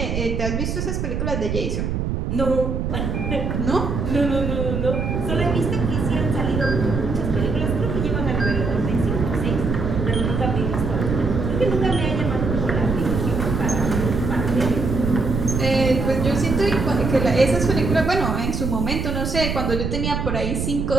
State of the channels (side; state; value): right; noise; rumble, 1 dB below the sound